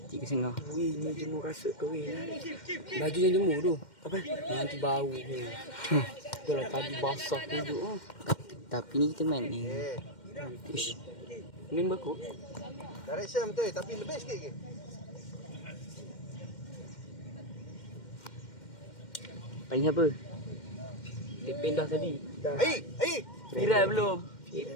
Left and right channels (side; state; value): right; late; 2.1 ms